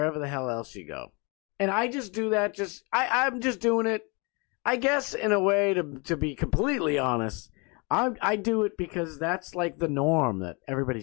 the hell else you go. And I just do that, I'm just doing it, I guess, in a way, to be completely honest. I do it because that's, like, the norm that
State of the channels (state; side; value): quieter; right; 30.5 dB